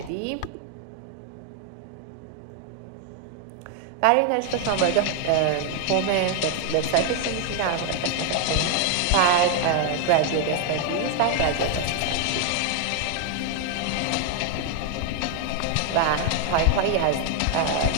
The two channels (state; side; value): different; both; correlation 0.00